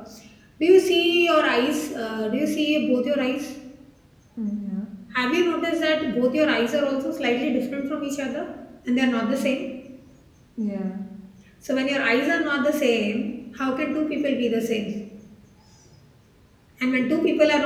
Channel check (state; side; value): identical; both; correlation 1.00